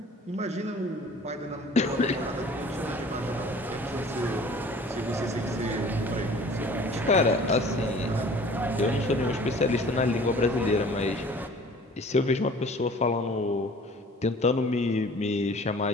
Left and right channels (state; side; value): normal; both; correlation 0.48